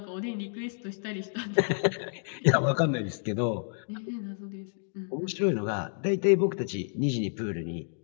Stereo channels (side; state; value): right; silent; 58 dB below the other